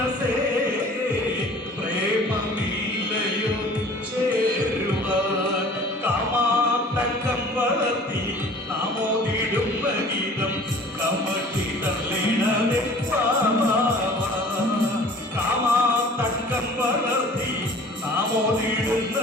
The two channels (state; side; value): normal; both; correlation 0.47